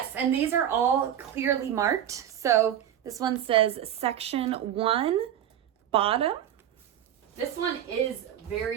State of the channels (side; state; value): left; quieter; 10.4 dB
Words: and these are all clearly marked. So this one says section 1, bottom. This one is